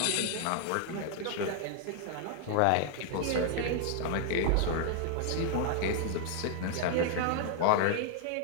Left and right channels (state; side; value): different; both; correlation 0.00